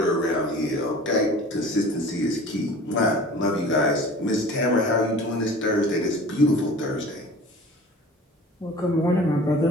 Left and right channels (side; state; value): both; normal; correlation 0.43